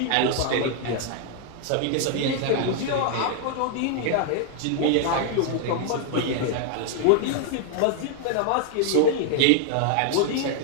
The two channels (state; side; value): different; both; correlation 0.00